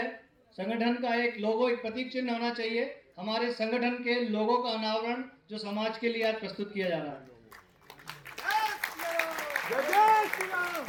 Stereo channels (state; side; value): identical; both; correlation 1.00